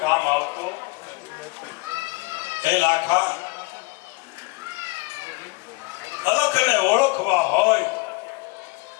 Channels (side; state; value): right; quieter; 26.2 dB